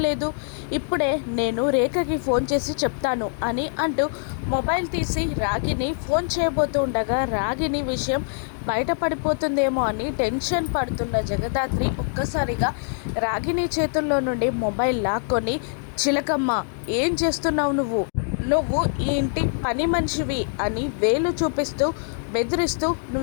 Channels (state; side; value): silent; right; 63 dB below the other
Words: ఇప్పుడే నేను రేఖకి ఫోన్ చేసి చెప్తాను అని అంటూ మొబైల్ తీసి రాగిని ఫోన్ చేయబోతూ ఉండగా రాగిని విషయం బయటపడిపోతుందేమో అని టెన్షన్ పడుతున్న జగదాత్రి ఒక్కసారిగా రాగిని చేతుల్లో నుండి మొబైల్ లాక్కొని, చిలకమ్మ ఏం చేస్తున్నావు నువ్వు? నువ్వు ఈ ఇంటి పని మనిషివి అని వేలు చూపిస్తూ బెదిరిస్తూ